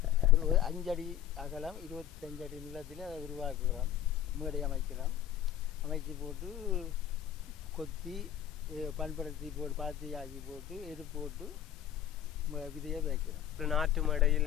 ஒரு 5 அடி அகலம் 25 அடி நிலத்தில் அதை உருவாக்குகிறோம். மேடை அமைக்கிறோம். அமைச்சு போட்டு கொத்தி பண்படுத்தி போட்டு பாத்தி ஆக்கி போட்டு எரு போட்டு விதையை வைக்கிறோம். நாட்டு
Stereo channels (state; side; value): quieter; right; 10.8 dB